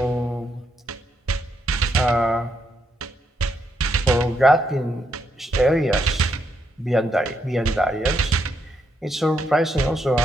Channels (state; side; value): normal; both; correlation 0.78